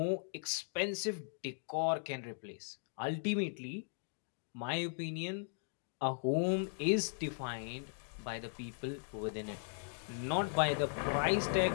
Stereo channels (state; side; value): silent; right; digital silence